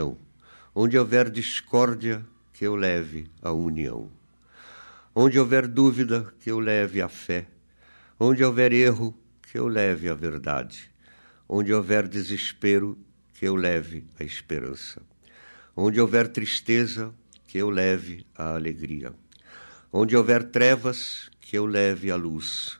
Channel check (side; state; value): both; inverted; correlation -1.00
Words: Onde houver discórdia, que eu leve a união. Onde houver dúvida, que eu leve a fé. Onde houver erro, que eu leve a verdade. Onde houver desespero, que eu leve a esperança. Onde houver tristeza, que eu leve a alegria. Onde houver trevas, que eu leve a luz.